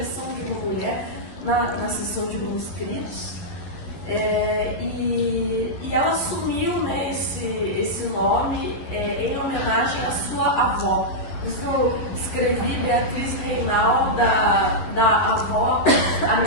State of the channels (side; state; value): right; late; 11 ms